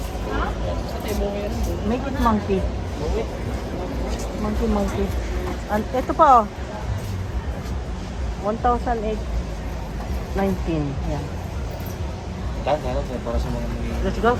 Make it monkey. Monkey. And ito pa oh. 1,819. Yan. Lahat para sa mga Let's go.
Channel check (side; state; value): both; identical; correlation 1.00